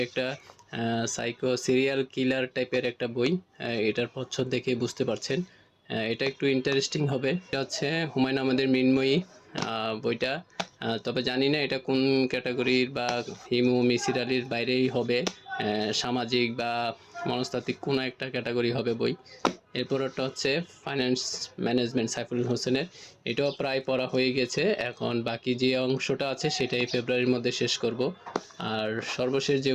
একটা সাইকো সিরিয়াল কিলার টাইপের একটা বই। এটার প্রচ্ছদ দেখে বুঝতে পারছেন এটা একটু ইন্টারেস্টিং হবে। এটা হচ্ছে হুমায়ুন আহমেদের মৃন্ময়ী বইটা, তবে জানি না এটা কোন ক্যাটাগরির বা হিমু মিসির আলির বাইরেই হবে, সামাজিক বা মনস্তাত্ত্বিক কোনো একটা ক্যাটাগরি হবে বই। এরপর একটা হচ্ছে ফাইন্যান্স ম্যানেজমেন্ট সাইফুল হোসেনের, এটাও প্রায় পড়া হয়ে গেছে। এখন বাকি যে অংশটা আছে সেটাই ফেব্রুয়ারির মধ্যে শেষ করব। আর সর্বশেষ যে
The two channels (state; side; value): identical; both; correlation 1.00